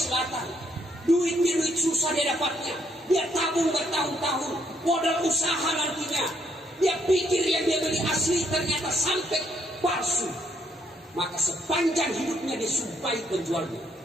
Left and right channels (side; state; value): both; normal; correlation 0.71